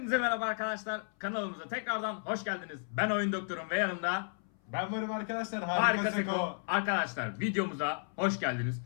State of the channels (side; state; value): right; silent; 55 dB below the other